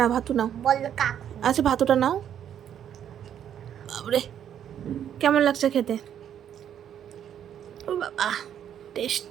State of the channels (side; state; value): left; quieter; 9.6 dB